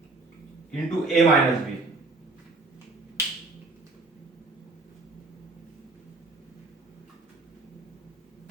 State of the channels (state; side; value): quieter; left; 3.4 dB